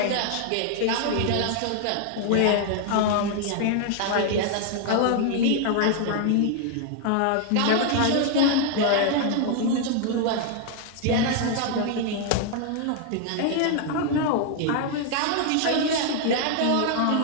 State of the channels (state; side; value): different; both; correlation 0.00